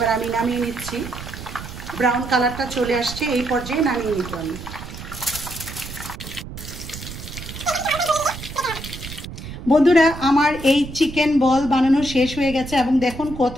আমি নামিয়ে নিচ্ছি। ব্রাউন কালারটা চলে আসছে, এই পর্যায়ে নামিয়ে নিতে আমি। বন্ধুরা আমার এই চিকেন বল বানানো শেষ হয়ে গেছে এবং দেখুন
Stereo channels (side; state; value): right; noise; rumble, 11 dB below the sound